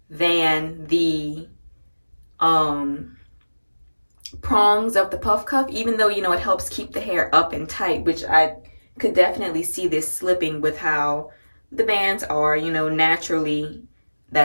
than the prongs of the puff cuff, even though, you know, it helps keep the hair up and tight, which I could definitely see this slipping with how the bands are. You know, naturally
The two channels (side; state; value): both; inverted; correlation -1.00